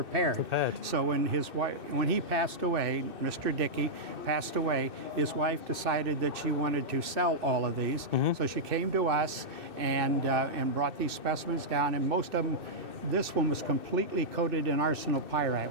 So when he passed away, Mr. Dickey passed away, his wife decided that she wanted to sell all of these. So she came to us and brought these specimens down, and most of them. This one was completely coated in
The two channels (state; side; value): late; left; 2.6 ms